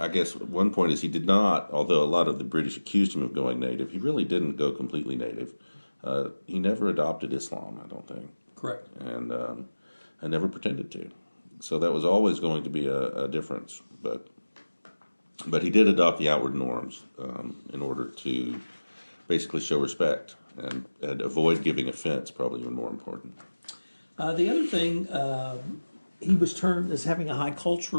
guess one point is he did not, although a lot of the British accused him of going native, he really didn't go completely native. He never adopted Islam, I don't think. Correct. And I never pretended to. So that was always going to be a difference. But he did adopt the outward norms in order to basically show respect and avoid giving offense, probably even more important. The other thing, he was termed as having a high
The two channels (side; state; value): both; inverted; correlation -1.00